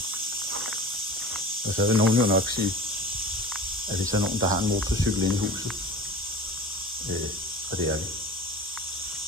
Og så vil nogen jo nok sige, at hvis der er nogen, der har en motorcykel inde i huset, og det er vi.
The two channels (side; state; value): both; normal; correlation 0.38